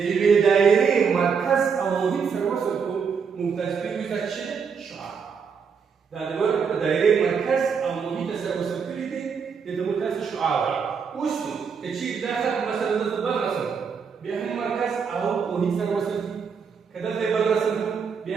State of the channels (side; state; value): left; quieter; 6.2 dB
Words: یوې دایرې مرکز او محیط سره وصل کړو موږ تاسې پوهېږو دا څه دی؟ شعاع. دا د دایرې مرکز او محیط سره وصل کړي دي دې ته موږ تاسې شعاع وایو. اوس نو که چېرې دا خط مثلا دلته بل رسم بیا هم مرکز او محیط سره وصل کړي، که دلته یې بل رسم کړو